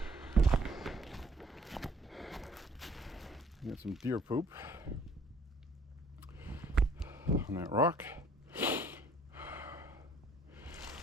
Get some deer poop on that rock.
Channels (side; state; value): both; normal; correlation 0.58